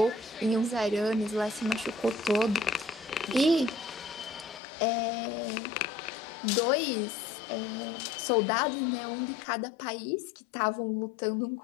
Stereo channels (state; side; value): drops out; right; at 4.6 s